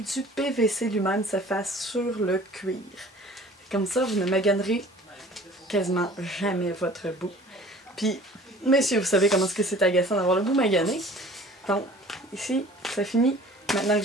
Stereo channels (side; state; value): both; normal; correlation 0.48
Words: PVC lui-même se fasse sur le cuir. Comme ça, vous ne maganerez quasiment jamais votre bout. Puis, messieurs, vous savez comment est-ce que c'est agaçant d'avoir le bout magané. Donc, ici, ça finit. Maintenant que